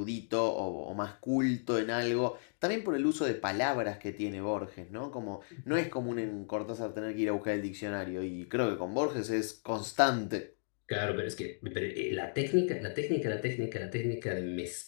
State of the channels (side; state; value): right; silent; digital silence